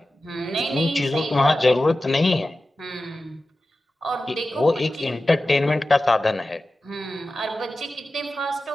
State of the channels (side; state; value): both; normal; correlation 0.94